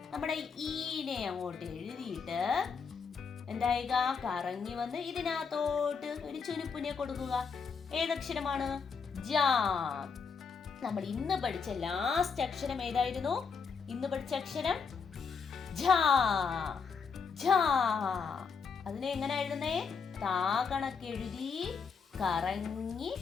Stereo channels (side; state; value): right; quieter; 5.6 dB